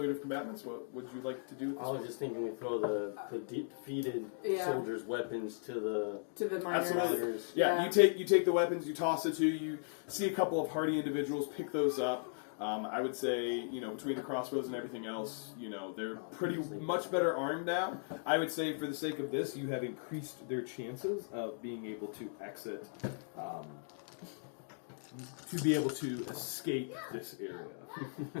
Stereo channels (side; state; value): right; silent; digital silence